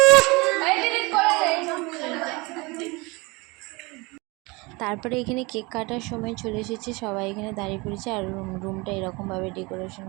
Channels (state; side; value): quieter; left; 25.5 dB